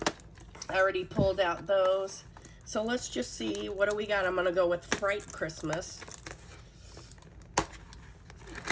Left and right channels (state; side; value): identical; both; correlation 1.00